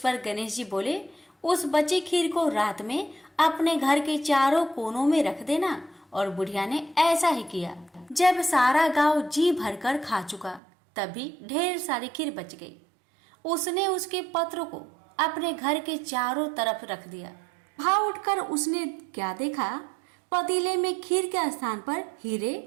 गणेश जी बोले, उस बची खीर को रात में अपने घर के चारों कोनों में रख देना। और बुढ़िया ने ऐसा ही किया। जब सारा गांव जी भरकर खा चुका, तभी ढेर सारी खीर बच गई। उसने उसके पत्रों को अपने घर के चारों तरफ रख दिया। वहां उठकर उसने क्या देखा? पतीले में खीर के स्थान पर हीरे,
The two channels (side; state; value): left; drops out; at 10.6 s